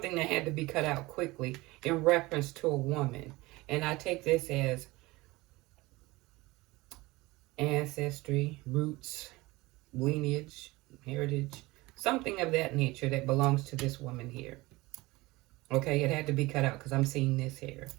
that had to be cut out quickly in reference to a woman. And I take this as ancestry, roots, lineage, heritage, something of that nature that belongs to this woman here. Okay, it had to be cut out because I'm seeing this here.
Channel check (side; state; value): left; quieter; 21.2 dB